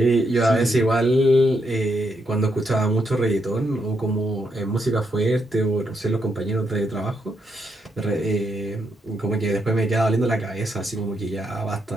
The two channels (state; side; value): normal; both; correlation 0.79